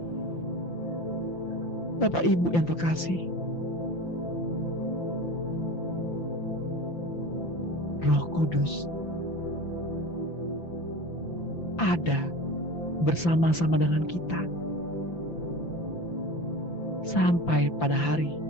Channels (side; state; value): right; late; 5.9 ms